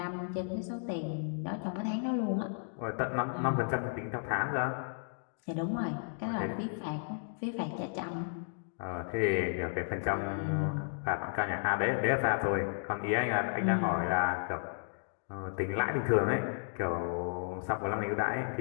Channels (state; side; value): silent; right; digital silence